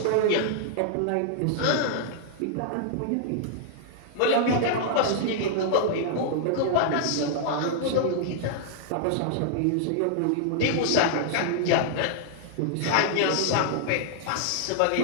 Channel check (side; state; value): both; different; correlation -0.01